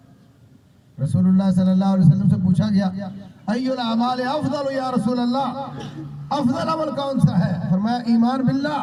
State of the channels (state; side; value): identical; both; correlation 1.00